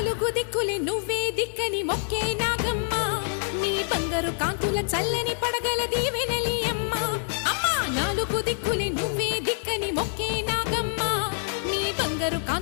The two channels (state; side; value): silent; right; digital silence